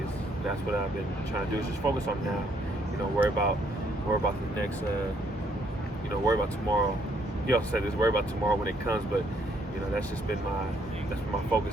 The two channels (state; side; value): normal; both; correlation 0.69